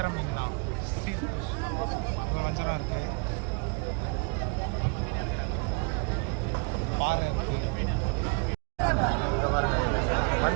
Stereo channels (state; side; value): quieter; left; 32.8 dB